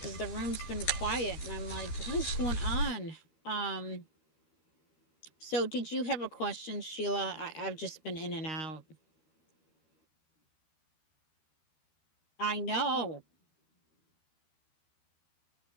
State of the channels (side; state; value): right; late; 13 ms